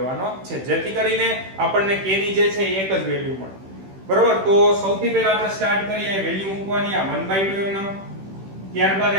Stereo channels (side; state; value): left; late; 16 ms